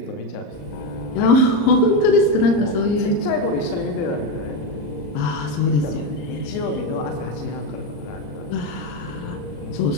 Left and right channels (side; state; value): right; late; 34 ms